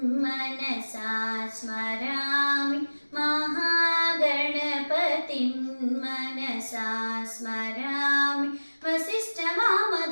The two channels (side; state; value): both; inverted; correlation -1.00